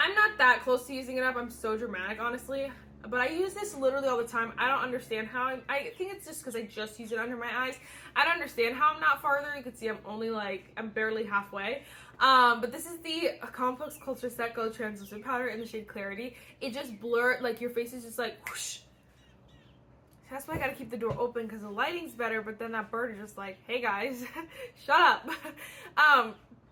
not that close to using it up. I'm so dramatic, honestly. But I use this literally all the time. I don't understand how. I think it's just because I just use it under my eyes. I don't understand how I'm not farther. You can see I'm barely halfway. But this is the Complex Culture Set Go Translucent Powder in the shade Clarity. It just blurs, like your face is just like whoosh. That's why I gotta keep the door open because the lighting's better, but then that bird is just like, hey guys, shut up.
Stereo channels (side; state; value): both; identical; correlation 1.00